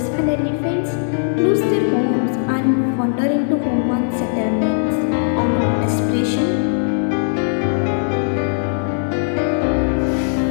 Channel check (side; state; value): right; silent; digital silence